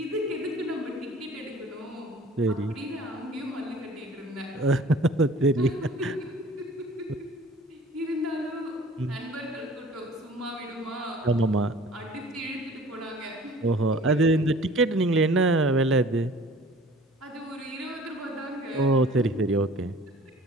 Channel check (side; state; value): both; normal; correlation 0.48